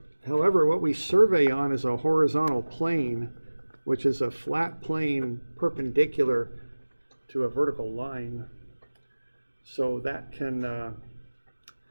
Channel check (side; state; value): both; inverted; correlation -1.00